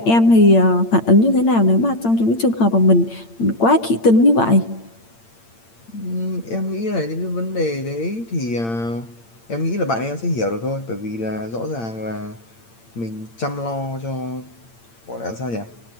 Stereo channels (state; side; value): late; right; 8.8 ms